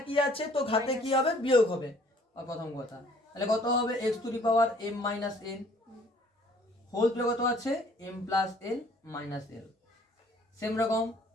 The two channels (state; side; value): normal; both; correlation 0.57